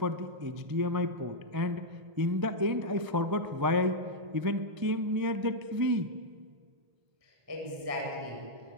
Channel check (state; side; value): late; left; 1.0 ms